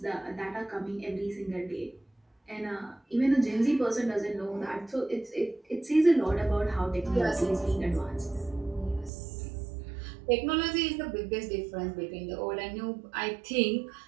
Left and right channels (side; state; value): left; drops out; at 9.1 s